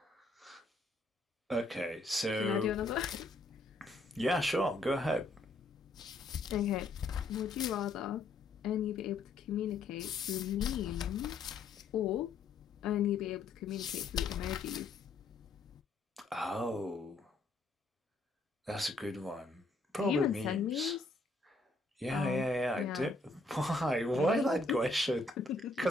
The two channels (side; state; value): right; quieter; 3.3 dB